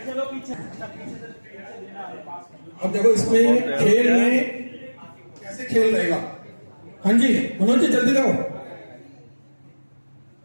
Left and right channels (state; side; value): inverted; both; correlation -1.00